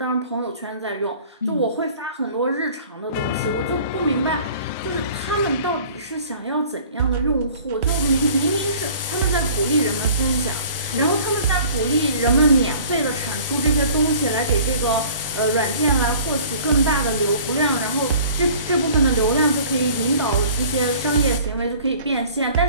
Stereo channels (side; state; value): both; inverted; correlation -0.48